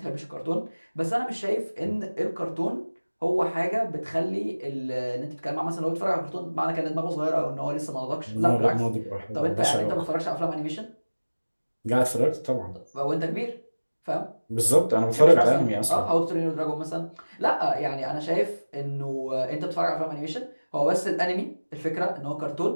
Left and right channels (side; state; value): both; inverted; correlation -1.00